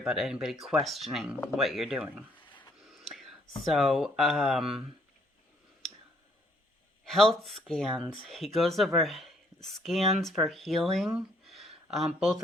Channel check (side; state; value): both; normal; correlation 0.65